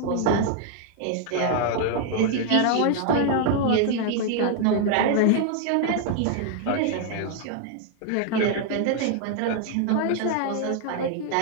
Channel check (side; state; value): both; different; correlation 0.00